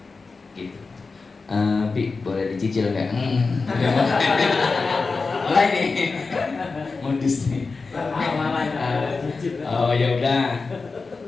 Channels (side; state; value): right; quieter; 4.2 dB